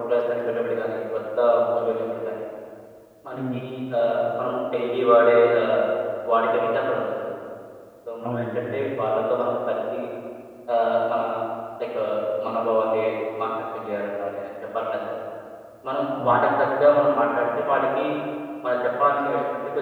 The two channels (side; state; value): both; identical; correlation 1.00